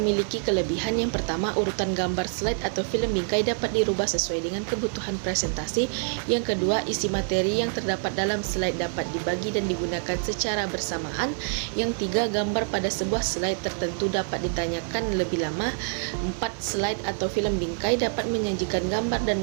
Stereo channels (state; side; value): silent; left; 61 dB below the other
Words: kelebihan. Yang pertama, urutan gambar slide atau film bingkai dapat dirubah sesuai dengan kebutuhan presentasi. Yang kedua, isi materi yang terdapat dalam slide dapat dibagi dan digunakan secara bersamaan. Yang tiga, gambar pada sebuah slide tertentu dapat ditanyakan lebih lama. 4, slide atau film bingkai dapat menyajikan gambar